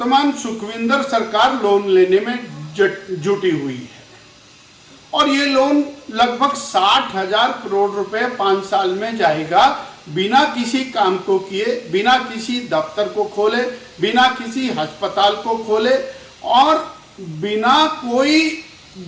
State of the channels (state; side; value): identical; both; correlation 1.00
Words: सुखविंदर सरकार लोन लेने में जुटी हुई है और ये लोन लगभग 60,000 करोड़ रुपए 5 साल में जाएगा, बिना किसी काम को किए, बिना किसी दफ्तर को खोले, बिना किसी अस्पताल को खोले और बिना कोई